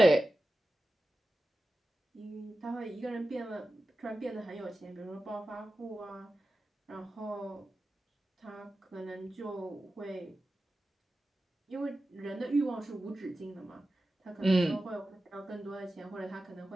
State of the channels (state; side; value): normal; both; correlation 0.94